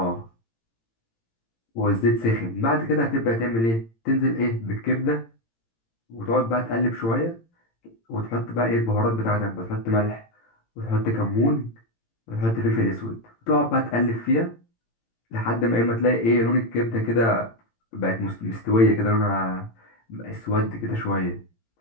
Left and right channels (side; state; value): right; late; 18 ms